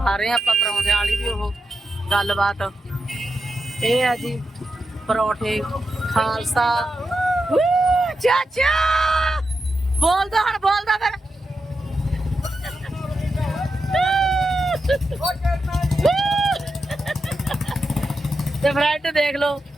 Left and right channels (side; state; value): both; normal; correlation 0.88